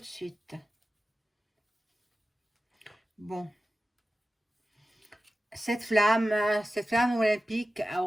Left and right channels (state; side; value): normal; both; correlation 0.94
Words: suite. Bon. Cette flamme olympique